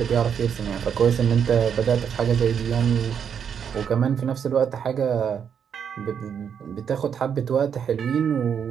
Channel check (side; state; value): left; quieter; 7.7 dB